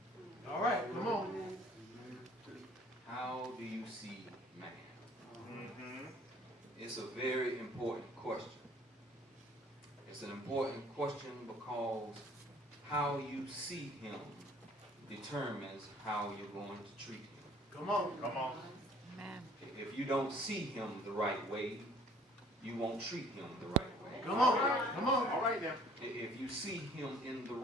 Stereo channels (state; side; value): normal; both; correlation 0.55